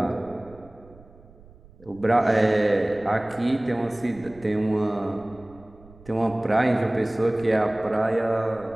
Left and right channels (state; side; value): noise; right; rumble, 24 dB below the sound